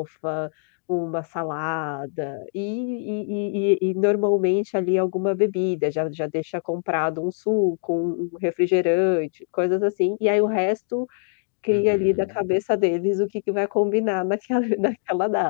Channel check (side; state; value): right; silent; digital silence